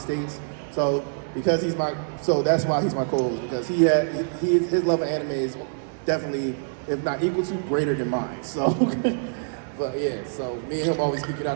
So that's why he's my co-host, because his love of anime is definitely, if not equal to, greater than mine. So, but yeah, so me and him always geek it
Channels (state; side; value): silent; left; digital silence